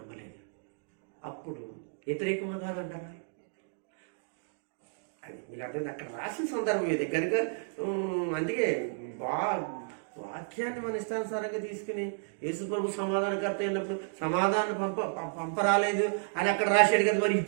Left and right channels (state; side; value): silent; left; digital silence